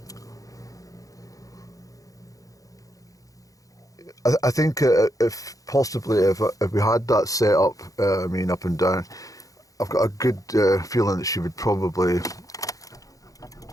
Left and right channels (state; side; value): late; right; 0.17 ms